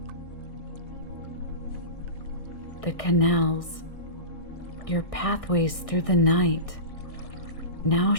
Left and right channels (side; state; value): right; late; 1.6 ms